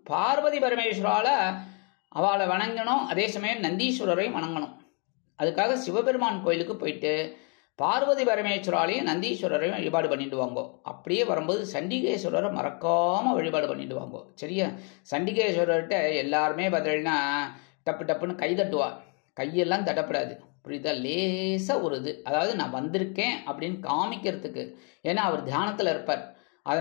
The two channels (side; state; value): right; quieter; 37.1 dB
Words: பார்வதி பரமேஸ்வரால அவளை வணங்கணும். அதே சமயம் நந்தீஸ்வரரையும் வணங்கணும். அதுக்காக சிவபெருமான் கோயிலுக்கு போயிட்டு பார்வதி பரமேஸ்வராலையும் நந்தீஸ்வரரையும் வழிபாடு பண்ணிட்டு வாங்கோ. அப்படியே வரும்போது சண்டிகேஸ்வரரை மறக்காம வழிபாடு பண்ணிட்டு வாங்கோ. சரியா? சண்டிகேஸ்வரர்கிட்ட எல்லாருமே பார்த்தீங்கன்னா டப்பு டப்புன்னு கை தட்டுவா. கையெல்லாம் தட்டப்படாது, புரியுதா? லேசாக ஒரு இது, அதாவது நான் வந்திருக்கேன் அப்படின்னு காமிக்கிறதுக்கு. ஏன்னா அவர் தியானத்தில் இருப்பார்,